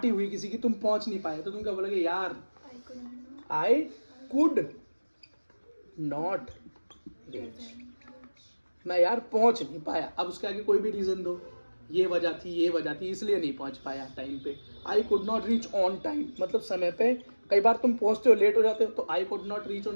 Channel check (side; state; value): both; inverted; correlation -1.00